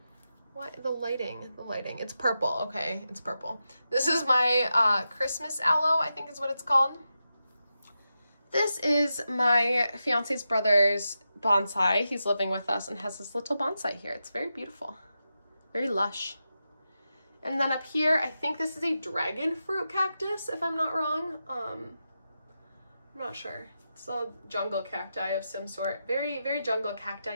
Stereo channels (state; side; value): inverted; both; correlation -0.89